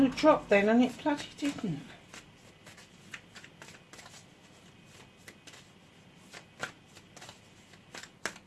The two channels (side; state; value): both; identical; correlation 1.00